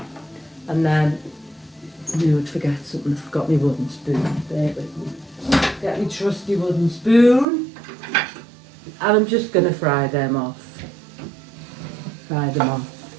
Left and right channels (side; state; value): left; drops out; at 7.5 s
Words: And then I knew I'd forget something. I forgot my wooden spoon. There with me. Get my trusty wooden spoon. And I'm just going to fry them off. Just,